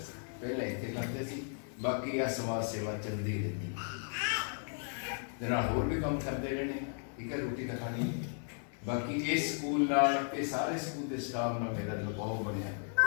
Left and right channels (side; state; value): right; silent; 54 dB below the other